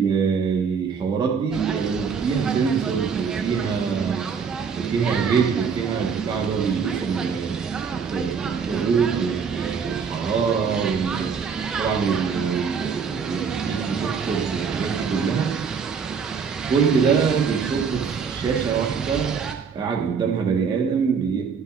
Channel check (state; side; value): quieter; left; 6.1 dB